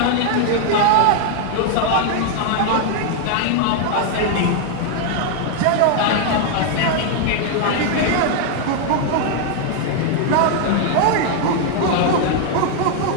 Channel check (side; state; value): both; different; correlation 0.00